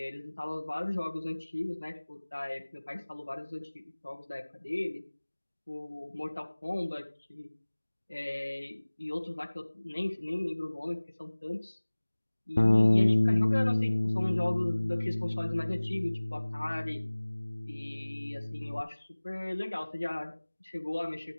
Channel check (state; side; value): inverted; both; correlation -1.00